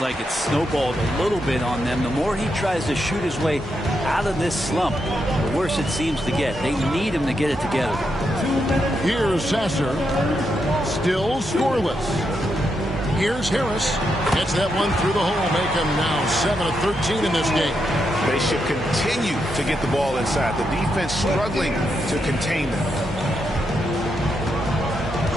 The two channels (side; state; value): both; normal; correlation 0.82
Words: like it's snowballed a little bit on them. The more he tries to shoot his way out of this slump, the worse it seems to get. They need him to get it together. Here's Sasser. Still scoreless. Here's Harris. Gets that one through the hole. Make him now 7 of 13 in this game. They should continue to get the ball inside. The defense struggling to contain them.